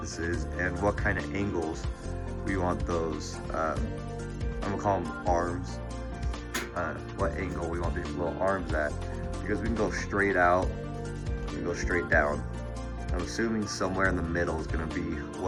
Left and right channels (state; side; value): identical; both; correlation 1.00